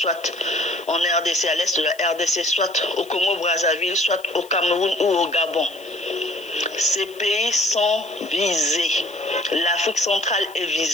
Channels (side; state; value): left; noise; hiss, 24 dB below the sound